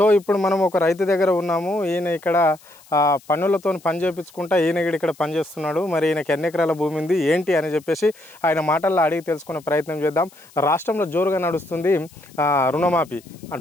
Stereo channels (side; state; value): left; noise; hiss, 26 dB below the sound